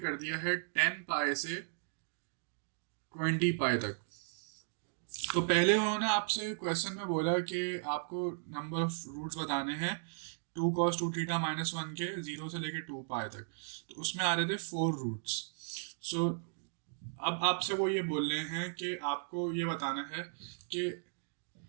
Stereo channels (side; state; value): left; silent; digital silence